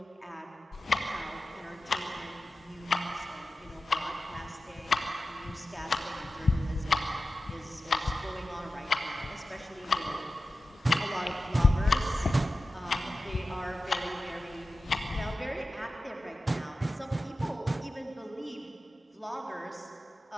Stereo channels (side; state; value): both; normal; correlation 0.94